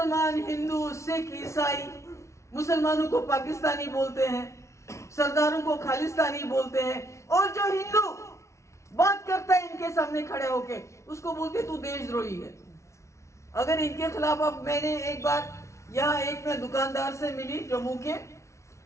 हिंदू, सिख, ईसाई, मुसलमानों को पाकिस्तानी बोलते हैं, सरदारों को खालिस्तानी बोलते हैं, और जो हिंदू बात करता है इनके सामने खड़े होके उसको बोलते तू देशद्रोही है। अगर इनके खिलाफ, अब मैंने एक बार यहाँ एक मैं दुकानदार से मिली जम्मू के,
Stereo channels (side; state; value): right; late; 0.14 ms